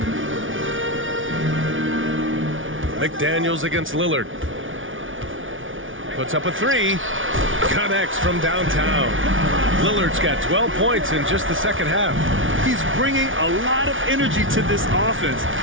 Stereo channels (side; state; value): left; late; 0.57 ms